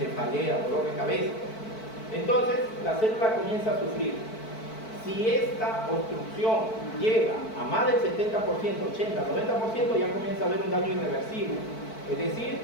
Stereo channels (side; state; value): right; late; 4.5 ms